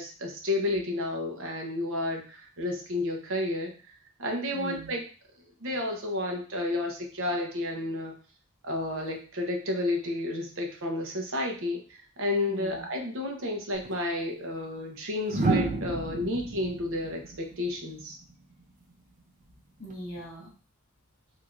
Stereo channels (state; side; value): normal; both; correlation 0.20